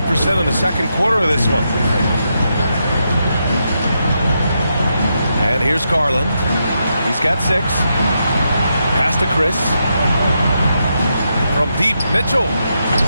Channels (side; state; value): both; inverted; correlation -0.83